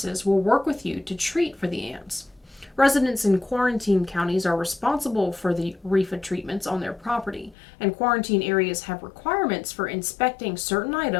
will work with you to treat for the ants. Residents in quarantine counties are responsible for the REFA treatments on their property, and quarantine areas have requirements for inspecting certain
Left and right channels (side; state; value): right; drops out; at 7.6 s